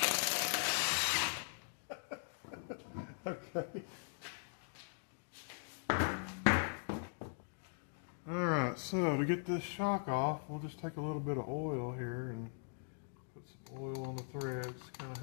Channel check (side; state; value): right; silent; digital silence